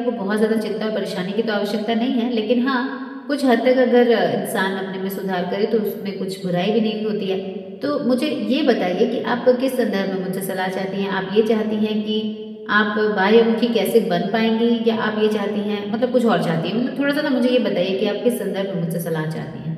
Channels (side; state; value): both; identical; correlation 1.00